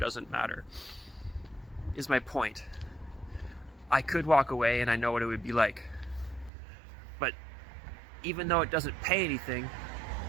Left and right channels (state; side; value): drops out; left; at 6.5 s